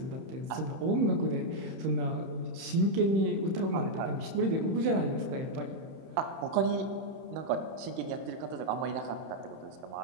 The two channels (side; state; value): left; late; 31 ms